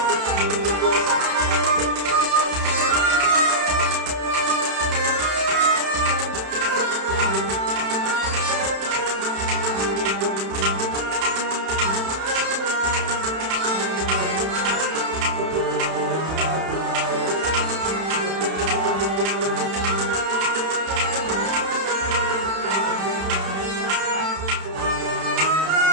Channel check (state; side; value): late; left; 31 ms